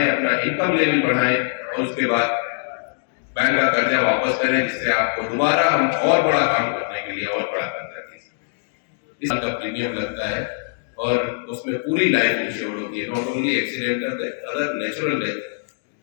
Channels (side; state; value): right; silent; digital silence